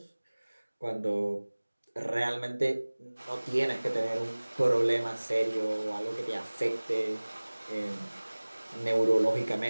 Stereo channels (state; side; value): inverted; both; correlation -1.00